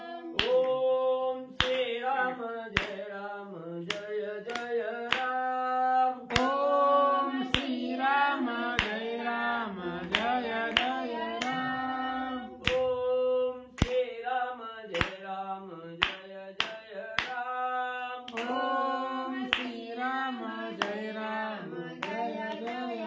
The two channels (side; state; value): both; identical; correlation 1.00